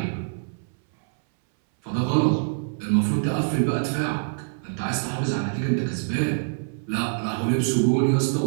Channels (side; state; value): left; silent; 60 dB below the other